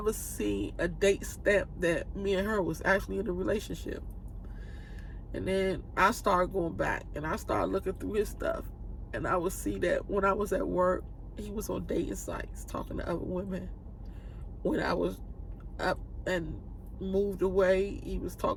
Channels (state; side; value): identical; both; correlation 1.00